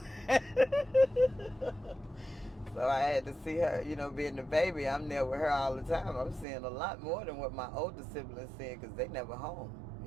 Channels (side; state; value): left; drops out; at 6.5 s